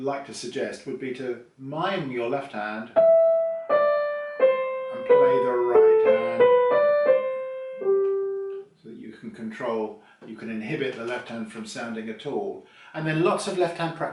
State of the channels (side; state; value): both; identical; correlation 1.00